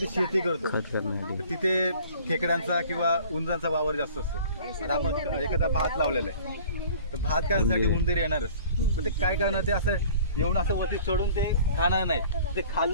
शेती करतो तिथे खेकड्यांचा किंवा उंदरांचा वावर जास्त असतो. आता आपण एखादा भात लावलेला आहे, तर भात करण्यासाठी उंदीर येणारच. पण ते काय करणार, ते असं येऊन असं वरती चढून ते खाणार नाही, ते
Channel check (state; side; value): inverted; both; correlation -0.48